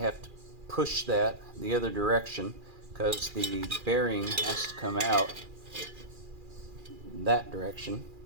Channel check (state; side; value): late; left; 2.4 ms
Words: to push that the other direction because the bearing has to come out that direction.